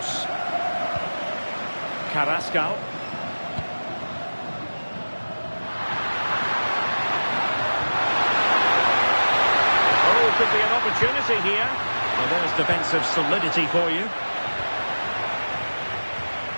Carrascal. Oh, could be an opportunity here. Well, there's defensive solidity for you.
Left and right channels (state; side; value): inverted; both; correlation -1.00